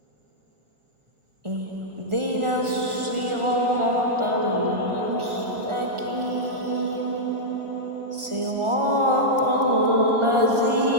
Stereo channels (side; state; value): left; late; 1.4 ms